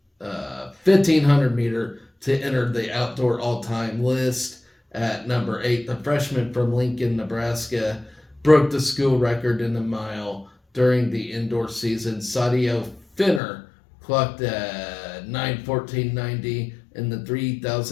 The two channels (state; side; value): drops out; right; at 13.4 s